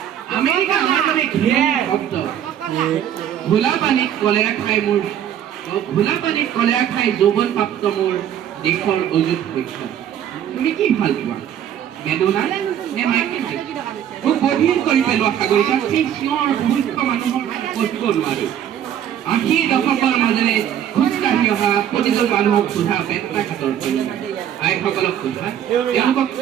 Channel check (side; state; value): left; quieter; 10.1 dB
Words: America আমাৰ বাবে ঘৃণনীয় শব্দ। ঘোলা পানীত কলেৰা খাই যৌৱন প্ৰাপ্ত মোৰ দেশৰ অযুত শৈশৱ। তুমি কি ভাল পোৱা? মেডোনা নে মাইকেল জেকচন? মোক বধিৰ কৰি পেলোৱা সাগৰিকা সেই চিঞৰ মূৰ্খ মানুহৰ পঢ়িব নোৱাৰো। ৮০ দশকৰ মাজেৰে খোজকাঢ়ি অহা প্ৰতিজন মানুহক সোধা পেট্টাঘাটৰ আইসকলক সোধা তেওঁলোকক